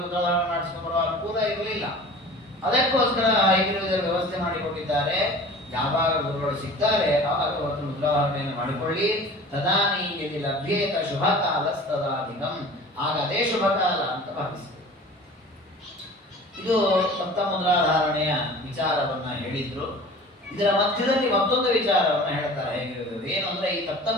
ಮುದ್ರಾಧಾರಣೆ ಮಾಡಿಸ್ಕೊಂಡ್ಬರೋ ಅನುಕೂಲ ಇರಲಿಲ್ಲ. ಅದಕ್ಕೋಸ್ಕರ ಇದರ ವ್ಯವಸ್ಥೆ ಮಾಡಿಕೊಟ್ಟಿದ್ದಾರೆ. ಯಾವಾಗ ಗುರುಗಳು ಸಿಗ್ತಾರೆ ಆವಾಗ ಅವತ್ತು ಮುದ್ರಾಧಾರಣೆಯನ್ನು ಮಾಡಿಕೊಳ್ಳಿ. ತದಾನೀಯದಿ ಲಭ್ಯೇತ ಶುಭ ಕಾಲ ತದಾಧಿಕಂ, ಆಗ ಅದೇ ಶುಭ ಕಾಲ ಅಂತ ಭಾವಿಸಿ. ಇದು ಸಪ್ತ ಮುದ್ರಾಧಾರಣೆಯ ವಿಚಾರವನ್ನ ಹೇಳಿದ್ರು. ಇದರ ಮಧ್ಯದಲ್ಲಿ ಮತ್ತೊಂದು ವಿಚಾರವನ್ನ ಹೇಳ್ತಾರೆ. ಏನು ಅಂದ್ರೆ, ಈ ಸಪ್ತ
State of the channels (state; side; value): normal; both; correlation 0.42